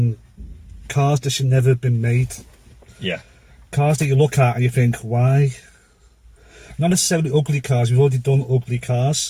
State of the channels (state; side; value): identical; both; correlation 1.00